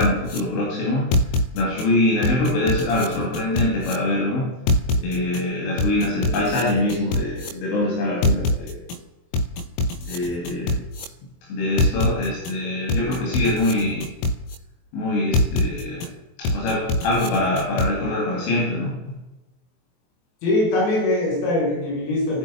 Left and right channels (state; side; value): late; right; 23 ms